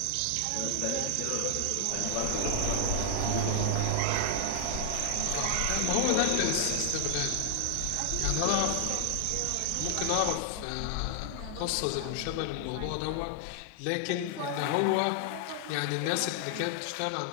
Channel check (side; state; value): both; different; correlation 0.00